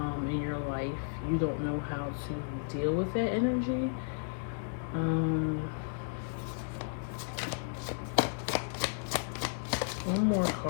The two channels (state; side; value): silent; right; digital silence